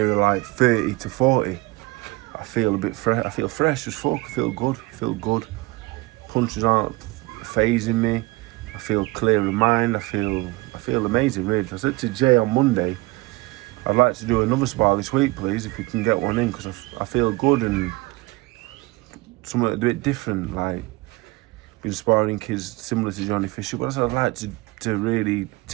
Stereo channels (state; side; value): quieter; left; 22.3 dB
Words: like 30 to 40, I feel a bit fresh. I feel fresh as fuck. I feel good. Punches aren't phasing me. I feel clear in mind. I feel amazing, really. I said to Jay on Monday, I'd like to do another spar this week, please, if we can get one in, because I feel good and something a bit different. Like, been sparring kids similar to Johnny Fisher, but I said I'd like to really